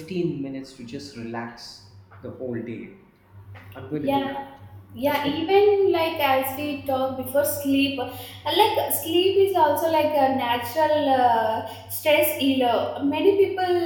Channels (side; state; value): both; identical; correlation 1.00